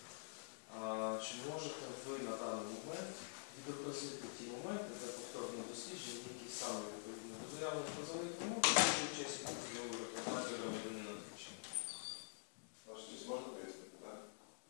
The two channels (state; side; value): silent; right; digital silence